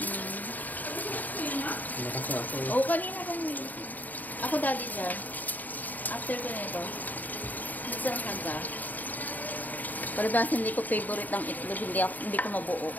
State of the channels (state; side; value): late; right; 0.083 ms